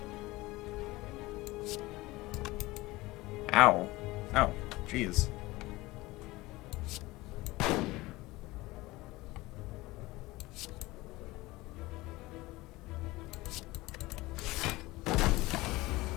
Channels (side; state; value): right; quieter; 20.2 dB